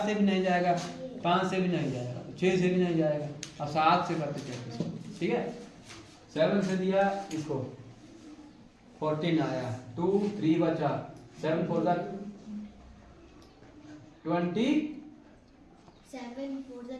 से भी नहीं जाएगा, 5 से भी नहीं जाएगा, 6 से भी नहीं जाएगा। अब 7 से करते चलते, ठीक है। 7 से दिया इसको 14 आया, 2 3 बचा, 7 4 20 7 4 20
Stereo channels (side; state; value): both; identical; correlation 1.00